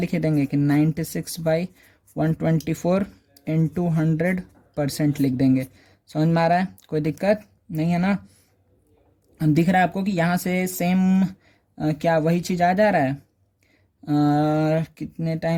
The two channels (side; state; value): both; identical; correlation 1.00